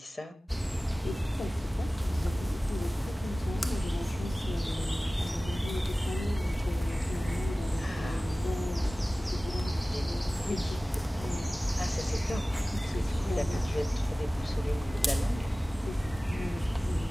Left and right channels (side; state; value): both; normal; correlation 0.97